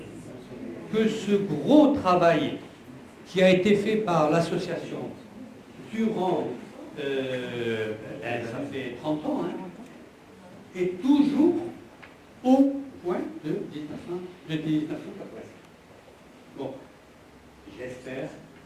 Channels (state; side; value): identical; both; correlation 1.00